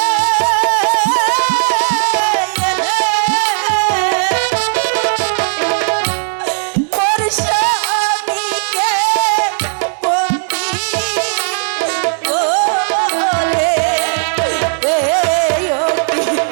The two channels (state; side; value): silent; left; digital silence